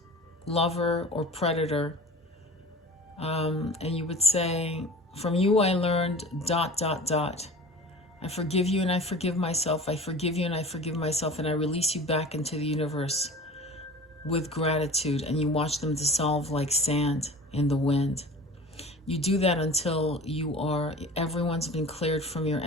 lover or predator. And you would say, from you I learned ... I forgive you and I forgive myself. I forgive you and I forgive myself. And I release you back into the universe with gratitude. And you watch them dissolve like sand in the wind. You do that until everyone's been cleared from your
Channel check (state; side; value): normal; both; correlation 0.39